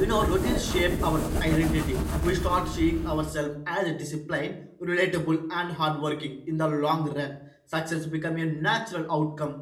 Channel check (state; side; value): identical; both; correlation 1.00